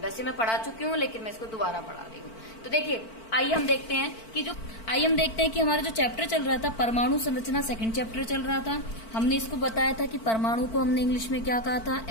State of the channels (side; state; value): right; late; 4.5 ms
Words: मैं पढ़ा चुकी हूँ, लेकिन मैं इसको दोबारा पढ़ा रही हूँ। तो देखिए, आइए हम देखते हैं कि हमारा जो चैप्टर चल रहा था परमाणु संरचना, सेकंड चैप्टर चल रहा था। हमने इसको बताया था कि परमाणु को हमने इंग्लिश में क्या कहा था?